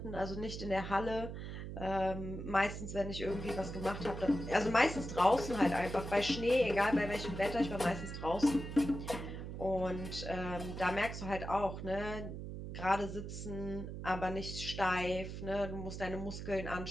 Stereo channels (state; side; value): noise; right; hum, 7 dB below the sound